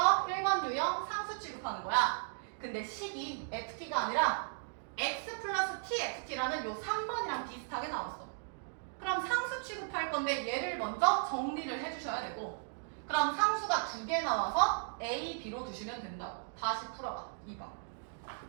1번 유형 상수 취급하는 거야. 근데 식이 ft가 아니라 x 플러스 tft라는 요 3번이랑 비슷하게 나왔어. 그럼 상수 취급할 건데 얘를 먼저 정리를 해주셔야 되고, 그럼 상수가 2개 나와서 a, b로 두시면 된다고. 다시 풀어봐. 2번.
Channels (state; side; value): silent; left; digital silence